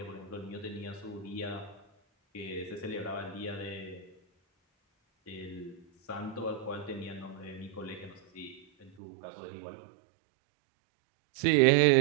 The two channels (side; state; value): left; drops out; at 8.9 s